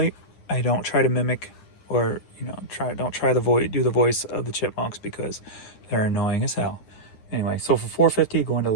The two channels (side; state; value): right; late; 9.8 ms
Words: I don't try to mimic or, don't try to do the voice of the Chipmunks because they're annoying as hell. Anyway, so for $4.50, going to